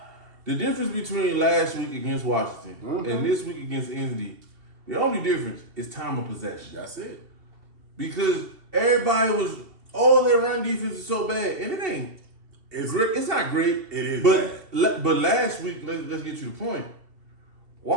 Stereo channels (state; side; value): late; left; 2.7 ms